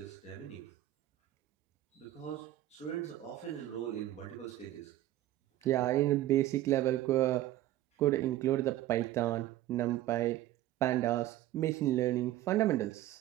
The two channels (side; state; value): left; quieter; 14.4 dB